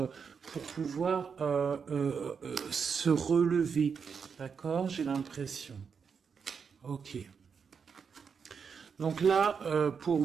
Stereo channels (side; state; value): left; quieter; 6.2 dB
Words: pour pouvoir se relever. D'accord? J'ai l'impression. Ok. Donc là, pour